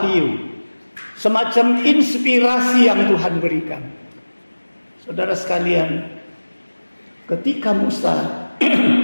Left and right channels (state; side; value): inverted; both; correlation -1.00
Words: semacam inspirasi yang Tuhan berikan. Saudara sekalian, ketika Musa